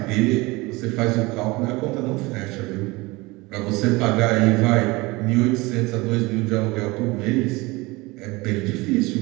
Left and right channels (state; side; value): quieter; left; 23.0 dB